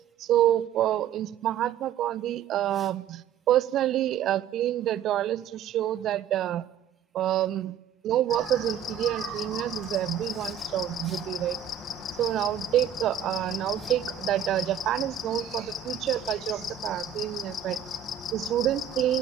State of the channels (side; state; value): left; quieter; 9.1 dB